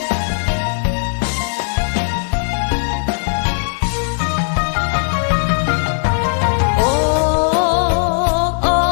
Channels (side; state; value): right; silent; digital silence